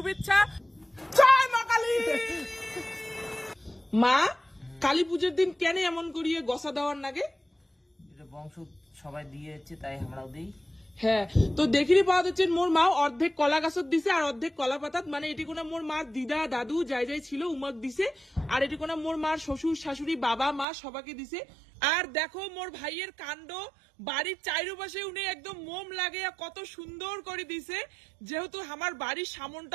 জয় মা কালী। মা কালী পুজোর দিন কেন এমন করিয়ে গসা দেওয়ার নাগে? এটা বংশ সবাই দিয়েছে তাই আমরাও দিই। হ্যাঁ, তো দেখিরি পাওয়া যাচ্ছে মোর মা অর্ধেক কলা গাছত দিছে আর অর্ধেক কলা পাতাত, মানে এটি কোনা মোর মার দিদা দাদু যাই যাই ছিল উমক দিছে। আর এটি কোনা মোর মার শ্বশুর শাশুড়ি বাবা মা সবাইকে দিছে। আর দেখো মোর ভাইয়ের কাণ্ড, বাড়ির চারিপাশে উনি একদম মোম লাগে কত সুন্দর করে দিছে। যেহেতু আমার বাড়ির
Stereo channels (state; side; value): drops out; left; at 20.7 s